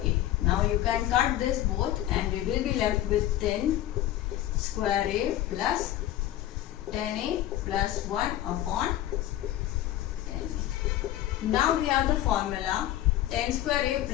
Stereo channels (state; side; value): quieter; right; 13.4 dB